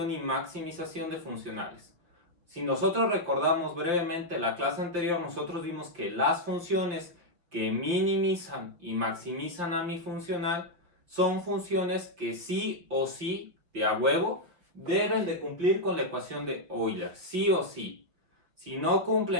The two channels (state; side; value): late; left; 5.9 ms